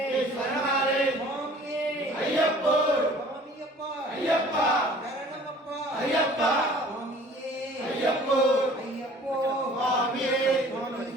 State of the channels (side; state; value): both; normal; correlation 0.50